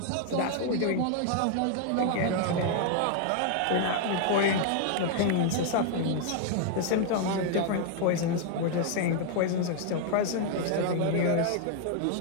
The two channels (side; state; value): both; different; correlation 0.00